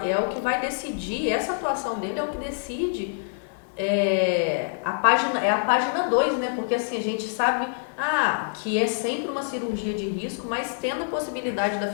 o que vai decidir, essa atuação dele é o que decide a página 2, né? Porque assim, a gente sabe que é sempre uma cirurgia de risco, mas tendo a possibilidade da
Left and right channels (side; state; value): right; silent; 58 dB below the other